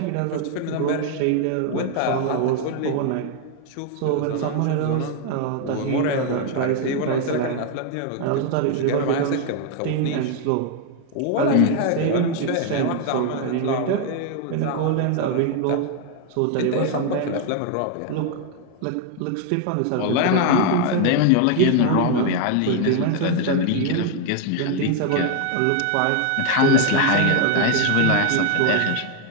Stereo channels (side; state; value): both; different; correlation 0.00